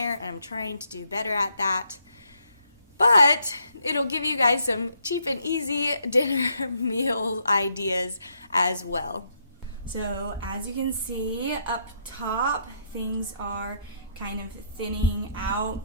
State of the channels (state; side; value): inverted; both; correlation -0.73